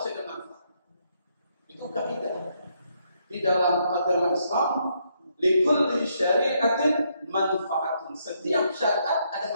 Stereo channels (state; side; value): inverted; both; correlation -0.75